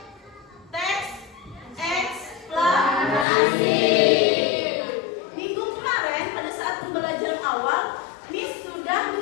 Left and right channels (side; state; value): right; drops out; at 3.2 s